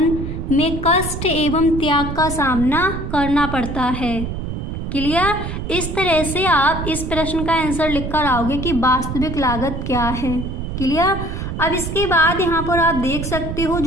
में कष्ट एवं त्याग का सामना करना पड़ता है। क्लियर? इस तरह से आप इस प्रश्न का आंसर लिखकर आओगे कि वास्तविक लागत क्या है। क्लियर? अब इसके बाद यहाँ पर आप देख सकते हो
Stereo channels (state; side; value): noise; right; rumble, 5 dB below the sound